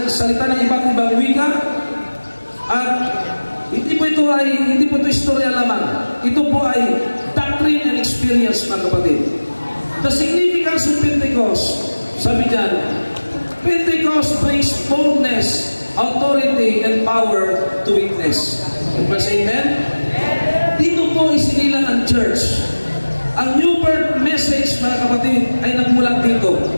ng iba't ibang wika. At hindi po ito istorya lamang. Ito po ay doctrine and experience, mga kapatid. The significance of Pentecost, sabi dyan, Pentecost brings boldness, authority, and power to witness. Amen? Dito po isinilang ang church. Ang new birth message, mga kapatid, ay nagmulat dito.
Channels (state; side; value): inverted; both; correlation -1.00